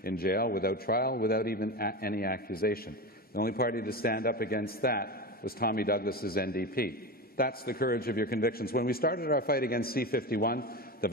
in jail without trial, without even any accusation. The only party to stand up against that was Tommy Douglas's NDP. That's the courage of your convictions. When we started our fight against C-51, the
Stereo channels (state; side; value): normal; both; correlation 0.23